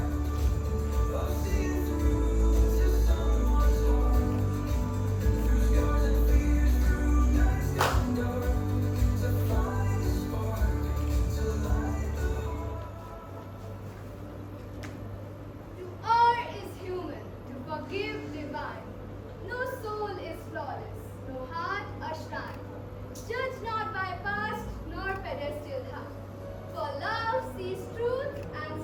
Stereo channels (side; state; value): both; identical; correlation 1.00